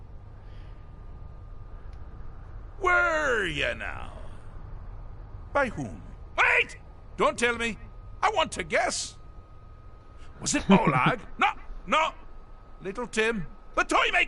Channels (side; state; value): both; identical; correlation 1.00